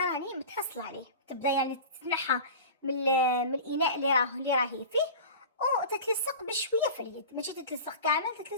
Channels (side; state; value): both; inverted; correlation -0.34